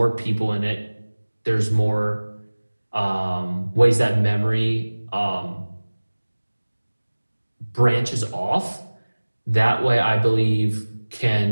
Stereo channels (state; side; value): inverted; both; correlation -1.00